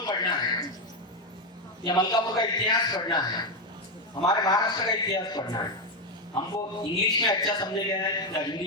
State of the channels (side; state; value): both; normal; correlation 0.08